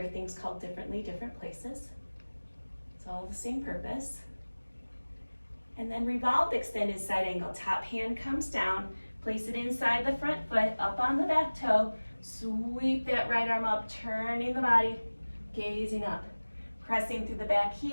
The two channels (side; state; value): both; inverted; correlation -1.00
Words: things called differently, different places. It's all the same purpose. And then revolved extended side angle, top hand comes down, place it inside the front foot, up on the back toe, sweep that right arm up, turning the body, gazing up. Pressing through the back